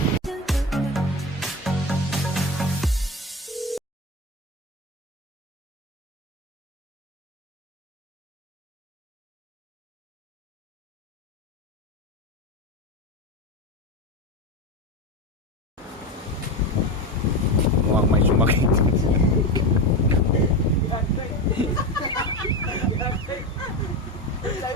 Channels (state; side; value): normal; both; correlation 0.21